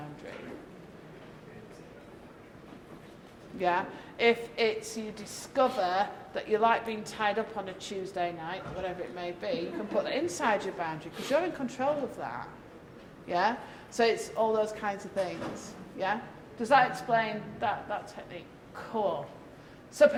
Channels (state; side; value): identical; both; correlation 1.00